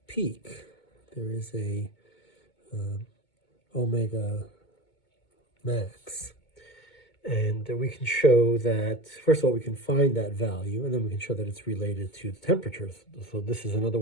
peak. There is a omega max. And we can show that, first of all, we can find that value, and then we can show that it's related to the temperature. So this is another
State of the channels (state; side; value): late; right; 2.2 ms